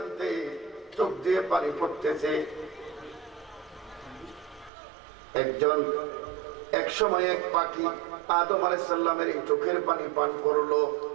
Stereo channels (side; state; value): left; drops out; at 4.7 s